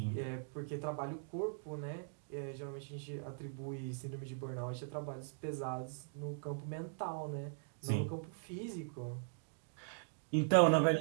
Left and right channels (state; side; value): silent; left; digital silence